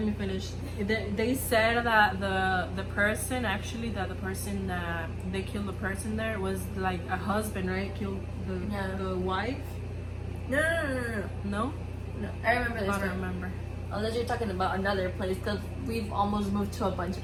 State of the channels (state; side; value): identical; both; correlation 1.00